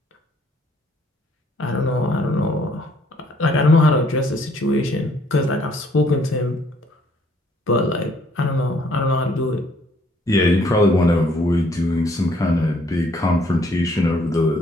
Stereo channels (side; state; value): both; normal; correlation 0.64